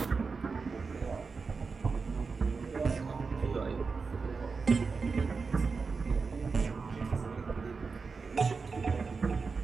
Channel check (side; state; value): left; quieter; 4.7 dB